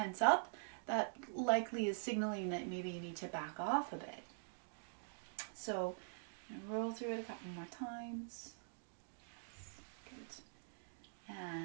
up, that likely is signaling that maybe you need to back off a bit. So I'm going to roll through it a couple more times. Good.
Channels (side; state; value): left; silent; digital silence